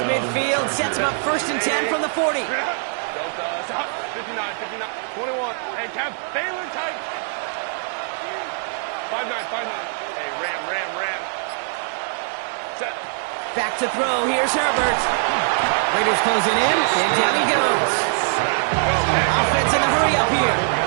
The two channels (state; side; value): silent; left; 62 dB below the other